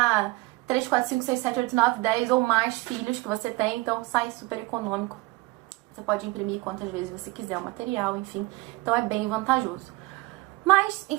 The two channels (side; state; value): left; quieter; 22.3 dB